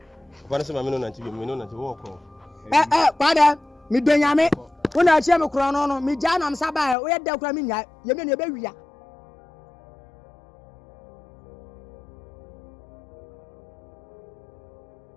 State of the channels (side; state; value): right; drops out; at 7.0 s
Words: Kwa na se ma me no na nti bi, me no na nti wo ko. Kwada mi benyame wona chem kro no mi ja na msa ba o ye da kra mi nya ye me ne be wia